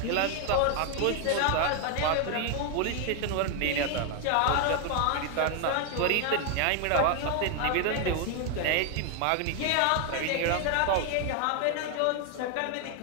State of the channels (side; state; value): both; different; correlation 0.01